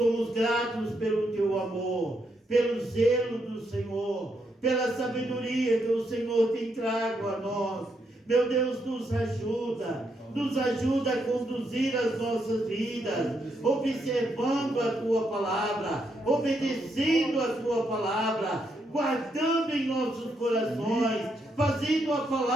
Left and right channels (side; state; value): both; normal; correlation 0.78